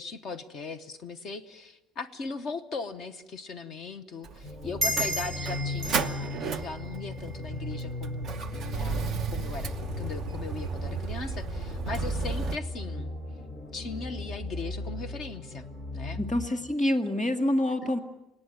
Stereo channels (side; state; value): both; normal; correlation 0.61